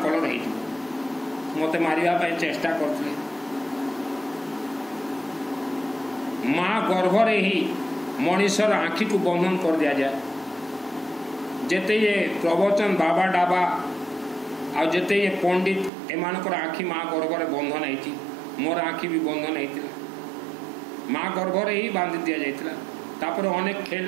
कलर हो मत मारे चेष्टा करते। माँ गर्भरे ही मनीषर आँखि को बंधन कर दिया जाए। जेते ये प्रवचन बाबा डाबा आ जेते ये पंडित एमानकर आँखि माँ गर्भरे बंधन होती मोर आँखि भी बंधन होता माँ गर्भरे ही बांधि दि जाइतिला। तापर अनेक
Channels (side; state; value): left; drops out; at 15.9 s